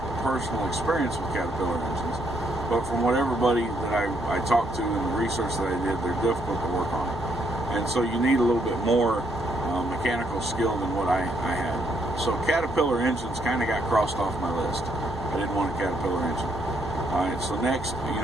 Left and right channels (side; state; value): both; normal; correlation 0.73